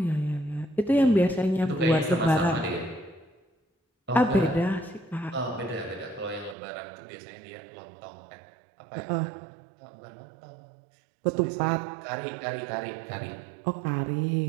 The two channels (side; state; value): left; drops out; at 6.6 s